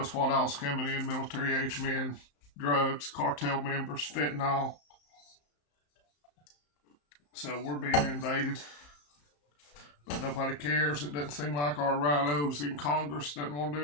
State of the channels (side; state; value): right; late; 34 ms